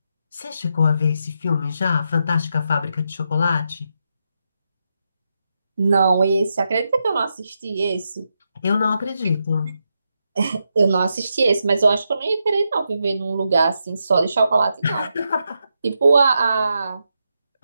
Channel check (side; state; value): both; inverted; correlation -0.84